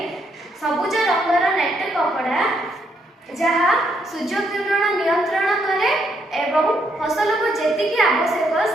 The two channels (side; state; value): both; normal; correlation 0.74